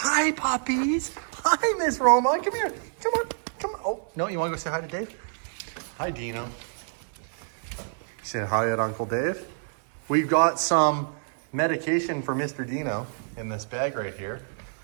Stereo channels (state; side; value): silent; left; digital silence